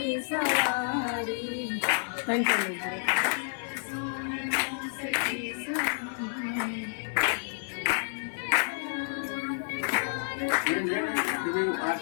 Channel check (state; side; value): silent; right; digital silence